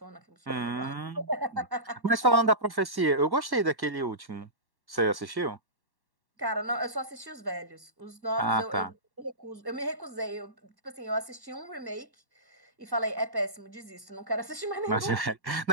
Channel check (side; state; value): left; late; 1.1 ms